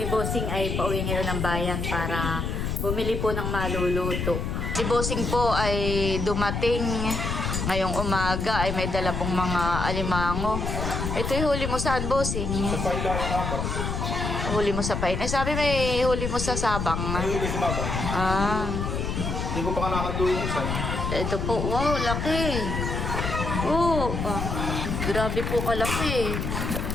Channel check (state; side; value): noise; left; rumble, 2 dB below the sound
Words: Bossing ay pauwi ngayon ng bayan para bumili po ng maluluto. Si Bossing po ay dumating ngayong umaga ay may dala pong mga alimango. Ito yung huli mo saan, Bossing? Sa pailayan ako. Huli mo sa pain. Eh, sabi may huli mo sa Sabang. May huli sa babang. Ah. Hindi ko pa nakatuloy ko sa'yo. Ito po. Wow, laki. Oh. Grabe po kalaki.